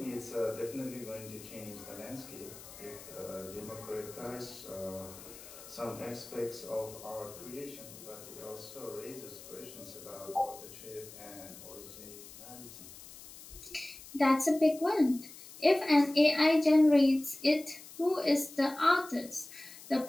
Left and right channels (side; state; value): left; noise; hiss, 16 dB below the sound